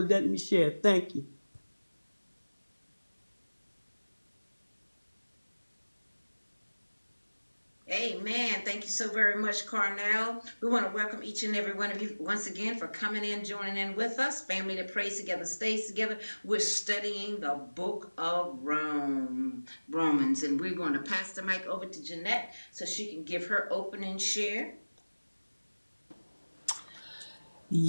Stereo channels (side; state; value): both; inverted; correlation -1.00